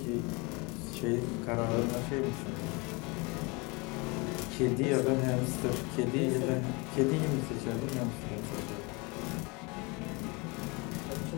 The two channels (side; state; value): right; quieter; 28.2 dB